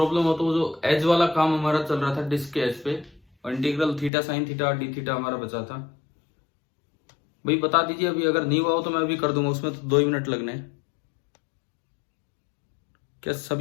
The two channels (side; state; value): right; drops out; at 4.1 s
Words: हो तो वो जो एज वाला काम हमारा चल रहा था डिस्क के एज पे, और integral theta sine theta D theta हमारा बचा था, भाई बता दीजिए। अभी अगर नहीं हुआ हो तो मैं अभी कर दूंगा, उसमें तो 2 ही मिनट लगने हैं। क्या